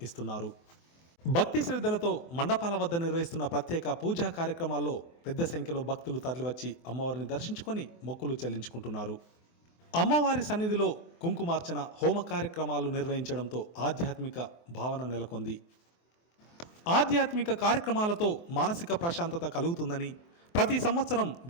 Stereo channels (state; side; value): late; right; 24 ms